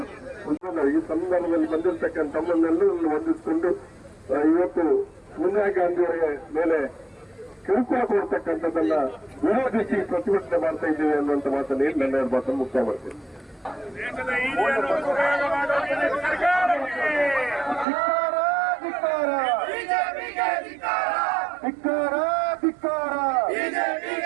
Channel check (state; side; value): drops out; left; at 17.9 s